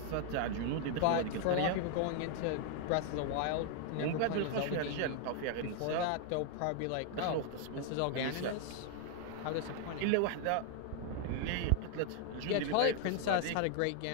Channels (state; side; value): different; both; correlation 0.00